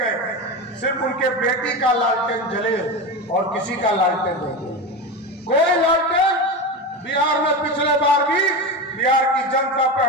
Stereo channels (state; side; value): normal; both; correlation 0.21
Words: सिर्फ उनके बेटी का लालटेन जले और किसी का लालटेन नहीं जले। कोई लालटेन बिहार में पिछले बार भी बिहार की जनता पे